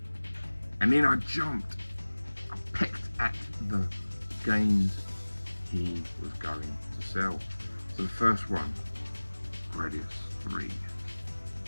And then I pecked at the games he was going to sell. So the first one, Gradius 3.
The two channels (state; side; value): inverted; both; correlation -1.00